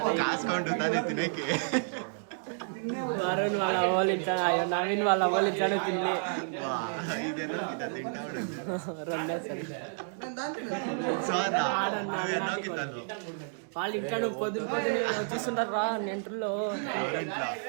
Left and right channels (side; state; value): left; silent; 57 dB below the other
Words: కాసుకుంటు తానే తినేకి. వరుణ్ వాళ్ళ అవ్వాలి నవీన్ వాళ్ళ అవ్వాలి తిని వా ఇదెన్నో కితా తింటా ఉండదు. రెండే సరే సోనా నువ్వు ఎన్నో కితాలు వాళ్ళు ఇంకా నువ్వు పొద్దున చూస్తుంటారు రా నెంటర్లో ఎవరింట్లో.